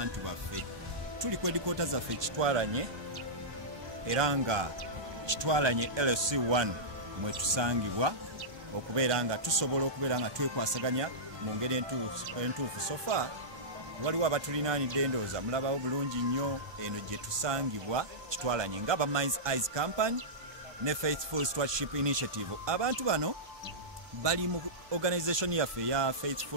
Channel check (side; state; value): left; late; 1.1 ms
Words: baffe. Tuli ku edikoota zaffe Kitwalanye era nga Kitwalanye LC1 mwe tusangibwa okubeera nga tusobola okubeera nga twekwasaganya mu ngeri entuufu. Sofa waliwo abatulinaanidde ndowooza mulabawo bulungi nnyo eno gye tusangibwa Kitwalanye nga Minds Eyes Company ne Faithful Stewardship Initiative. Abantu bano bali mu organisation yaffe ya